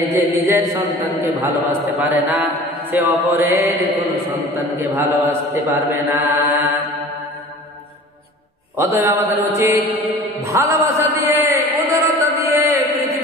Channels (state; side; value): normal; both; correlation 0.42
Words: যে নিজের সন্তানকে ভালোবাসতে পারে না, সে অপরের কোন সন্তানকে ভালোবাসতে পারবে না। অতএব আমাদের উচিত ভালোবাসা দিয়ে, উদারতা দিয়ে